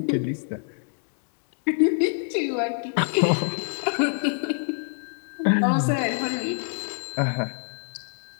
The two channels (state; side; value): silent; right; digital silence